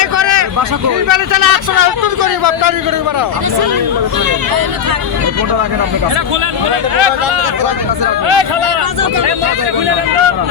করে চলে 100 টাকা করি বাপটারি করে বেড়াও।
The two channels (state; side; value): quieter; right; 8.2 dB